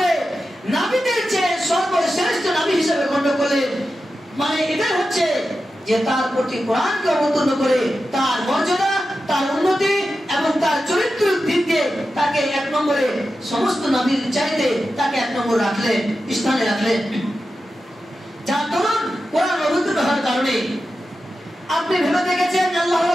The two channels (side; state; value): both; normal; correlation 0.91